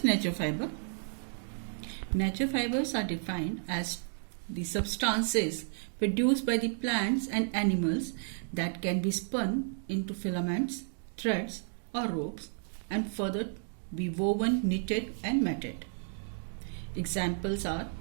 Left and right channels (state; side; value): silent; left; digital silence